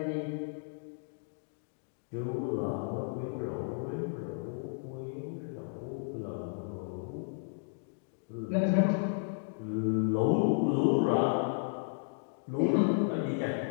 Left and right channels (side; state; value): right; silent; digital silence